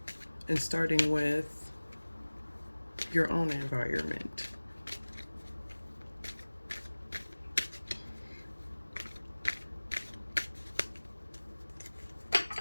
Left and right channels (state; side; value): inverted; both; correlation -1.00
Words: and starting with your own environment.